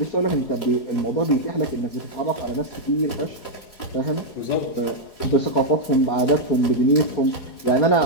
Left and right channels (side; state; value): right; late; 4.8 ms